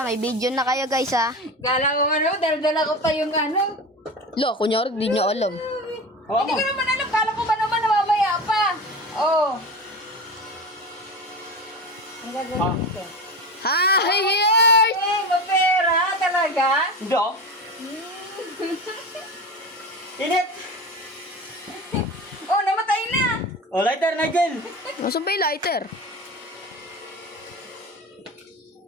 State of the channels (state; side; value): normal; both; correlation 0.27